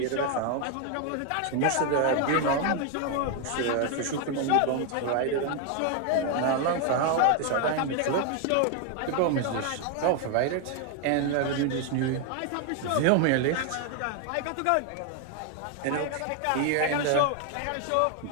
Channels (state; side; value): different; both; correlation 0.01